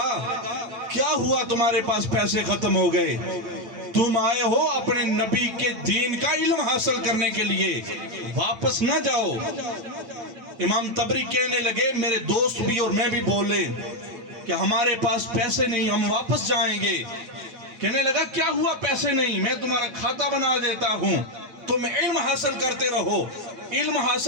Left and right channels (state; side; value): late; left; 8.9 ms